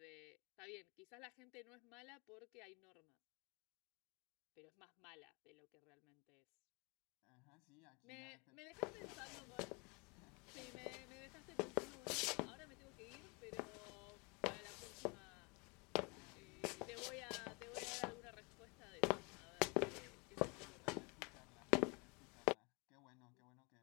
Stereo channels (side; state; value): right; quieter; 30.4 dB